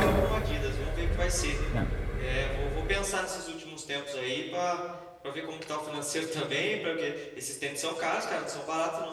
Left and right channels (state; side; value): identical; both; correlation 1.00